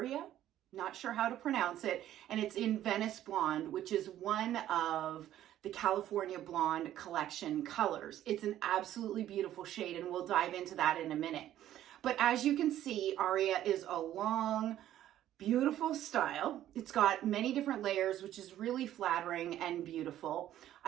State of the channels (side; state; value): left; quieter; 12.4 dB